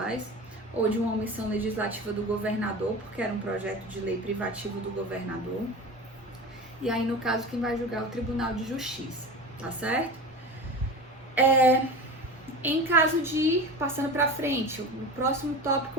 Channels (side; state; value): both; normal; correlation 0.31